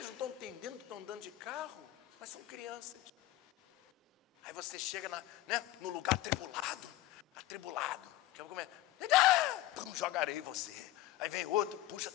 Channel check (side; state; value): right; quieter; 15.6 dB